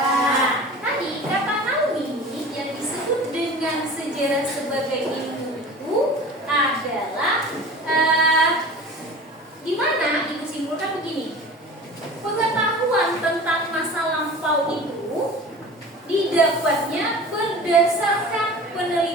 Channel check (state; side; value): normal; both; correlation 0.39